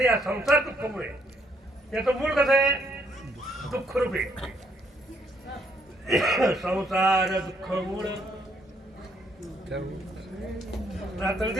या संसार दुःखमुळे याचं मूळ कसं आहे? दुःख रूपे संसार दुःख मूळ. रात्र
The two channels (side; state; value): both; normal; correlation 0.70